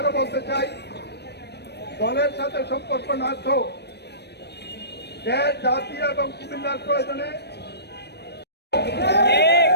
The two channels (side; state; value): right; late; 0.49 ms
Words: বলতে চাই, দলের সাথে সম্পর্ক না তো দেশ জাতি এবং কুমিল্লার প্রয়োজনে